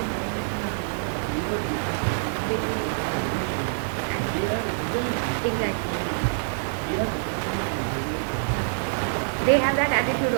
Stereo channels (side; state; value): left; silent; digital silence